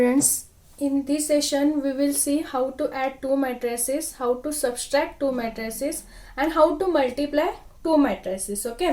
in this session we will see how to add two matrices, how to subtract two matrices and how to multiply two matrices.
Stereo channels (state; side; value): identical; both; correlation 1.00